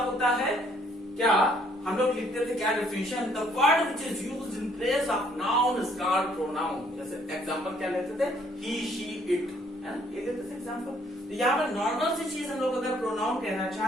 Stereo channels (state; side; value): normal; both; correlation 0.65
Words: है? क्या हम लोग लिखते थे क्या definition? The word which is used in place of noun is called pronoun. जैसे एग्जांपल क्या लेते थे, ही शी इट, है ना, ये देते थे एग्जांपल। तो यहाँ पर नॉर्मल सी चीज हम लोग अगर प्रोनाउन कहना